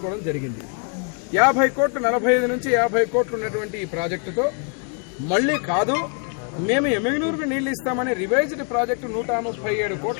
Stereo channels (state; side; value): quieter; right; 39.5 dB